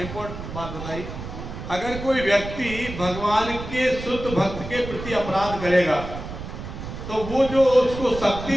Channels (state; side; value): noise; right; rumble, 9 dB below the sound